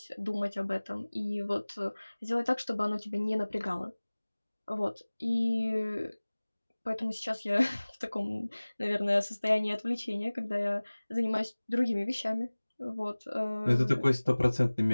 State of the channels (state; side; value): inverted; both; correlation -1.00